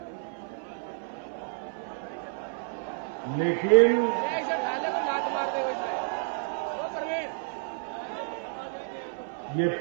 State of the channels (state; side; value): silent; left; 58 dB below the other